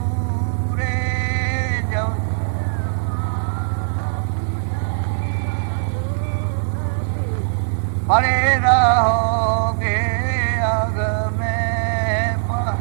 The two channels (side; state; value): left; silent; digital silence